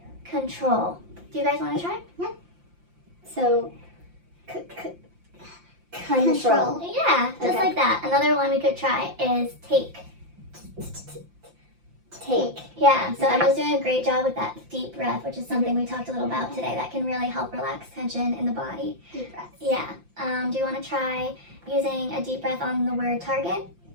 control. Do you guys want to try? So, control. Yeah, just Okay. like that. Another one we could try is take. Take. Yeah, so Emma's doing a great job with that deep breath, which is something we talked a little about today that can really help relax tension in the body. Deep breath. Yeah. Do you want to try using a deep breath on the word target?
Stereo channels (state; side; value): late; left; 5.8 ms